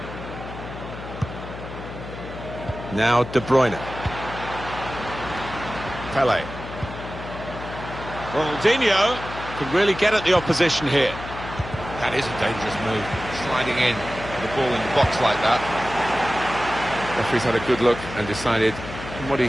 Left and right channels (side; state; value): left; noise; hum, 11 dB below the sound